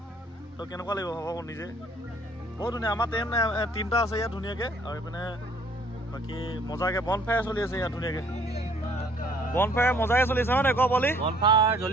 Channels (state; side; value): normal; both; correlation 0.59